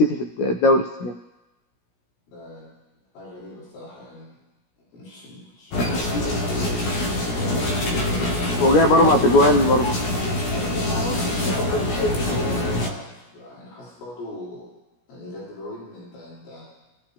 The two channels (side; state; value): right; late; 17 ms